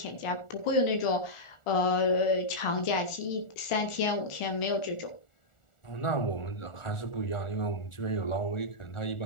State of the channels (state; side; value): late; right; 1.4 ms